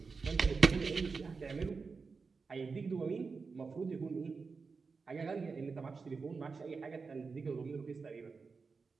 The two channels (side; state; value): left; quieter; 4.7 dB